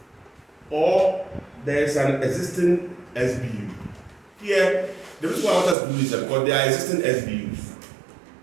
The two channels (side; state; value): left; drops out; at 5.8 s